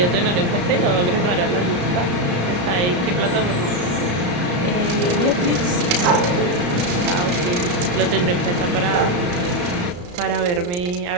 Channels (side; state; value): left; late; 34 ms